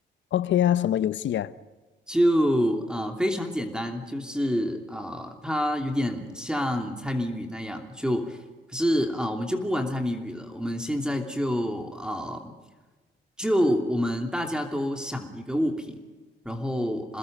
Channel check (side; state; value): both; normal; correlation 0.81